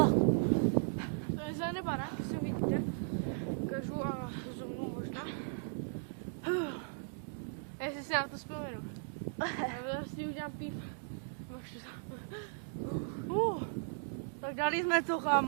je za nebara. ukážu a zoomnu možná. Jestli si na to vzpomenu. Já vlastně udělám píp. Tak dali jsme to,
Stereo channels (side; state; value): left; silent; digital silence